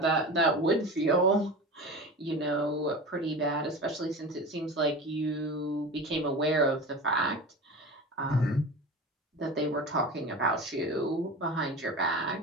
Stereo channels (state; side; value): normal; both; correlation 0.31